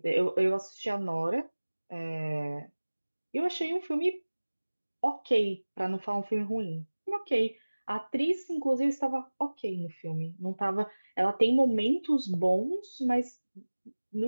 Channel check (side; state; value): both; inverted; correlation -1.00